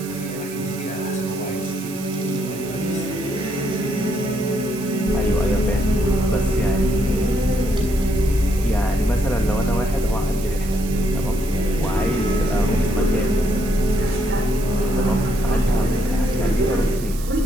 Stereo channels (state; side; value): noise; right; hiss, 14 dB below the sound